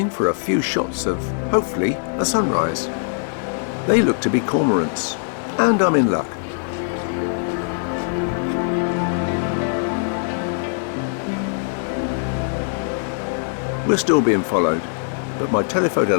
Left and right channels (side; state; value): right; silent; 65 dB below the other